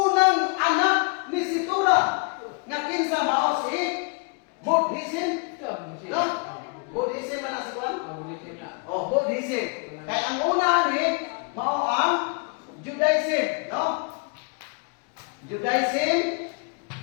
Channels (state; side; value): quieter; right; 34.0 dB